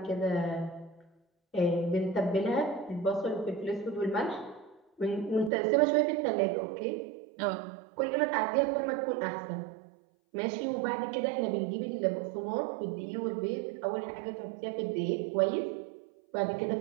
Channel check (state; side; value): drops out; left; at 5.5 s